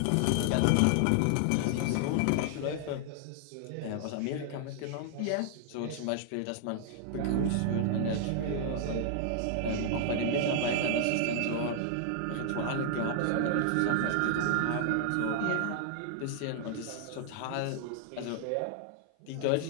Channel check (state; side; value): different; both; correlation 0.00